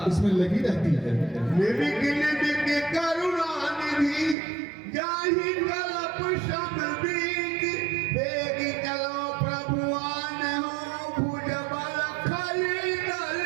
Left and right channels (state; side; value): drops out; left; at 4.4 s